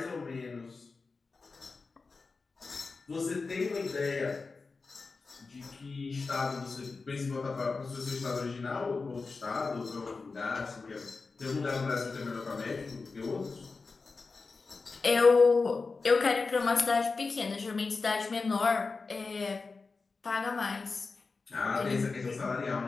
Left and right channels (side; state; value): right; quieter; 4.2 dB